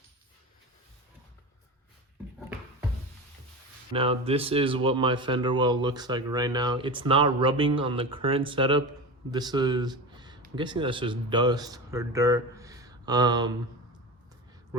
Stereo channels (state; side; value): normal; both; correlation 0.26